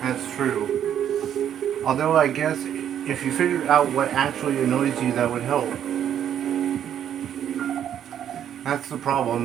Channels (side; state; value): left; quieter; 9.8 dB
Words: That's true. Although I guess if you figured out what actually annoys you, that would help. That's the